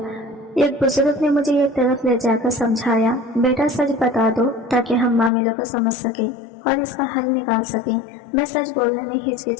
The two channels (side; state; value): right; drops out; at 5.3 s